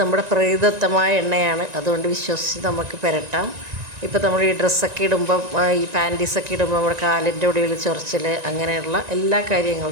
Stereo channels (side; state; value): left; late; 1.9 ms